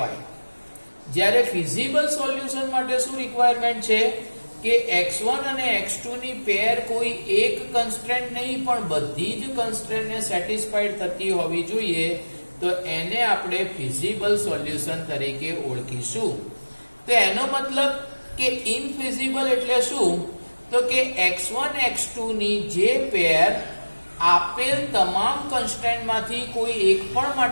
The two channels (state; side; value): inverted; both; correlation -1.00